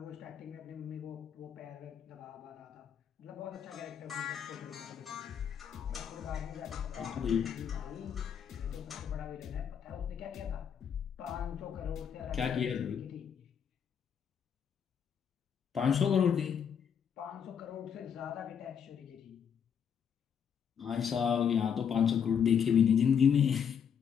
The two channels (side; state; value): right; quieter; 7.7 dB